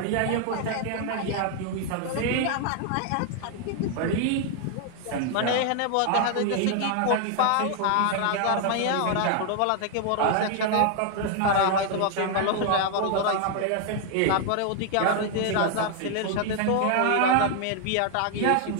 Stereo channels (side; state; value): both; different; correlation 0.00